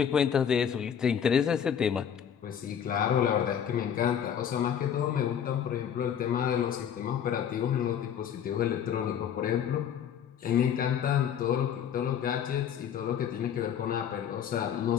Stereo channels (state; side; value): quieter; right; 8.7 dB